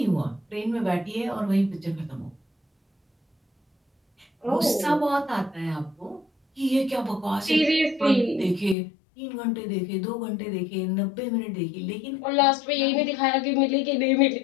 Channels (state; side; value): drops out; right; at 8.8 s